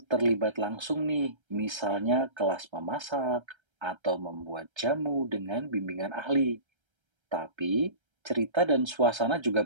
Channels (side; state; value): left; late; 1.3 ms